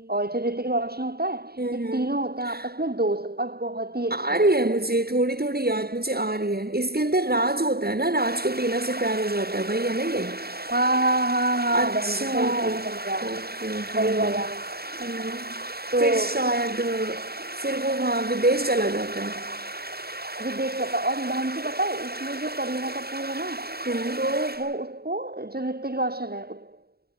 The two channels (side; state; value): left; late; 0.45 ms